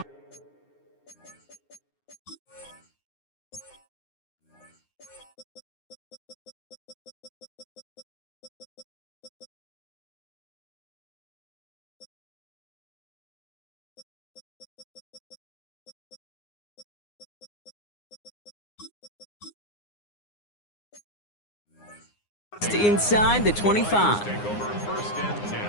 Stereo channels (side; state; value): right; late; 9.7 ms